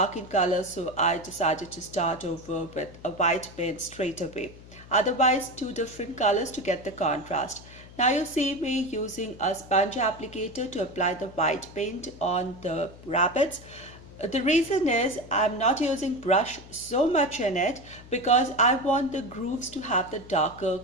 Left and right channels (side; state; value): left; noise; hum, 19 dB below the sound